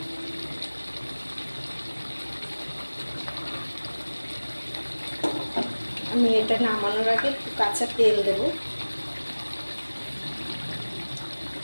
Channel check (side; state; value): both; inverted; correlation -1.00